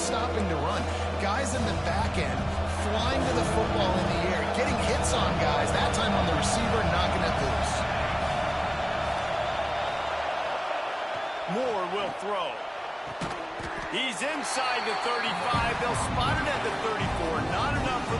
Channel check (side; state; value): both; identical; correlation 1.00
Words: stopping to run. Guys in the back end flying to the football in the air, getting hits on guys, that time on the receiver, knocking it loose. Moore will throw. He's inside the 35. They'll spot it at the 34. Not enough for